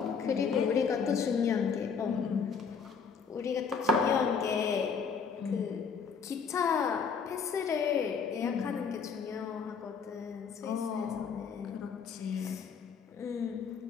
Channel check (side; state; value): right; quieter; 6.0 dB